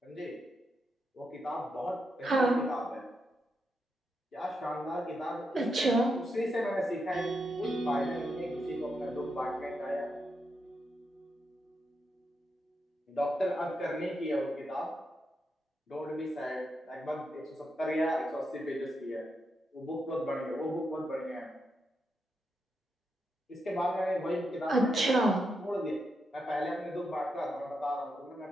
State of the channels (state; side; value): normal; both; correlation 0.84